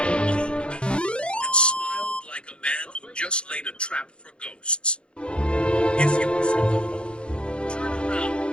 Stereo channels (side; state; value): right; late; 0.057 ms